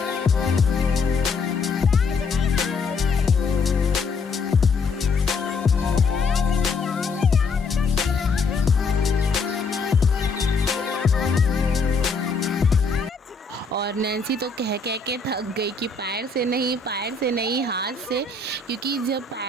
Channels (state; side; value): quieter; right; 4.2 dB